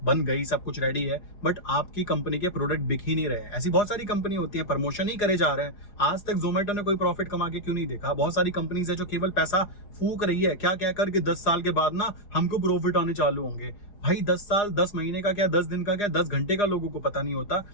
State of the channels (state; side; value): late; right; 4.9 ms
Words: बन गई, सब कुछ रेडी है, बट आपकी कंपनी के प्रोडक्ट बिक ही नहीं रहे। ऐसी बहुत सारी कंपनी होती है, प्रमोशन ही करे जा रहे हैं। आज तक जोमेटो ने कोई प्रॉफिट कमा के क्यों नहीं देखा? बहुत सारी कंपनीज है जो केवल पैसा फूक रही है, क्या कहकर कि 10 साल के बाद ना हमको प्रॉफिट आने चालू होंगे। भाई 10 साल, 10 महीने का क्या, 10 दिन का क्या, 10 घंटे का लोगों को पता नहीं होता,